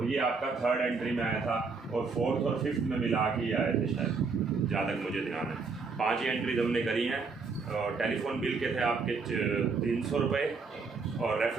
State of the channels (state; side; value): quieter; left; 4.6 dB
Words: ये आपका थर्ड एंट्री में आया था, और फोर्थ और फिफ्थ में मिला के ये आए थे शायद, जहाँ तक मुझे ध्यान है। 5 ही एंट्रीज हमने करी हैं। और टेलीफोन बिल के थे आपके 300 रुपये और